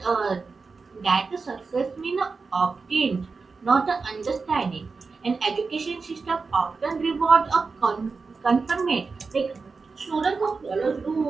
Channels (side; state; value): left; quieter; 4.5 dB